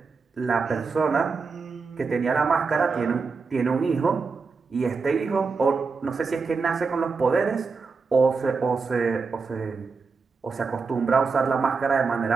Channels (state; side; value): quieter; left; 4.7 dB